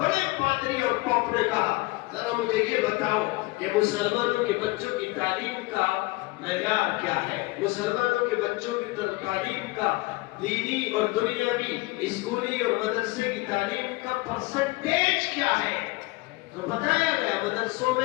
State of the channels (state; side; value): quieter; right; 22.8 dB